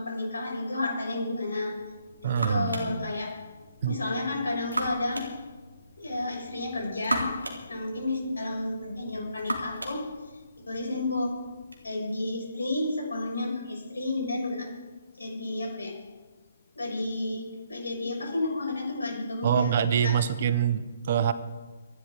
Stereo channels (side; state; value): both; inverted; correlation -0.70